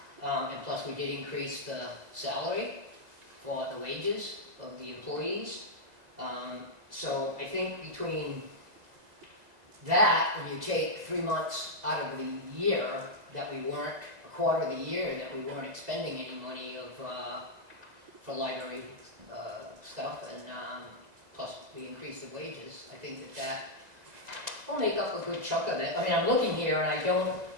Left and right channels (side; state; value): left; late; 2.0 ms